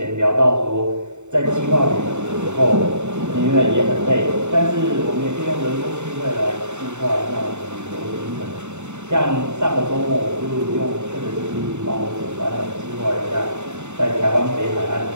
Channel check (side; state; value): left; late; 0.83 ms